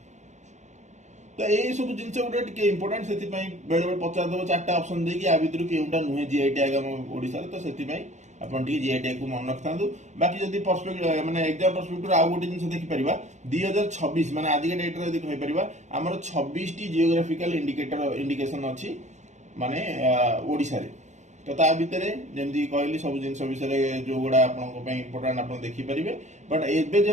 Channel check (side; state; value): left; late; 0.34 ms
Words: तो यही सब जिनस गोटे टिके इंपोर्टेंट से बेले बेले पचार दब चार्टा ऑप्शन देकी आ भितर केउटा नुहे जीआई टैग हम ओडिसा तो से अपन टी जीआई टैग को मन रखता। बाकी जदि पर्सपेक्टिव माने एग्जाम पर्सपेक्टिव आउ गोटे जिनस देखि परिबा 2026 माने आज के डेट रे यदि कहि परिबा हमर 26 टी जियोग्राफिकल इंडिकेशन अछि माने ओडिसा रे। तो ता भितर जेमती कहली सब जिनस विषय जो गुड़ा आपन इंपोर्टेंट आप देखि परिबे बट एबे